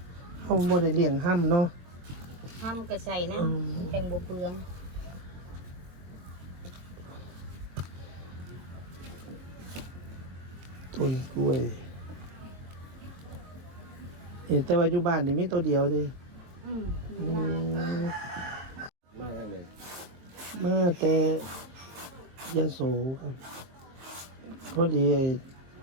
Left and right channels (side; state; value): left; late; 23 ms